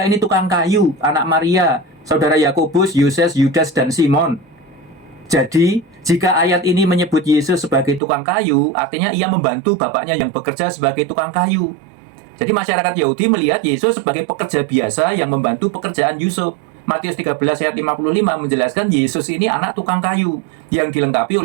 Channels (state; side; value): drops out; left; at 8.0 s